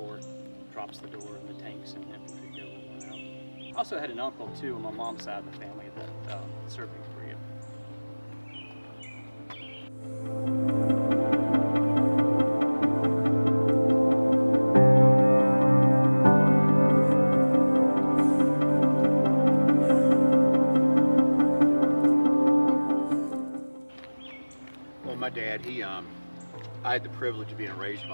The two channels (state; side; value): inverted; both; correlation -1.00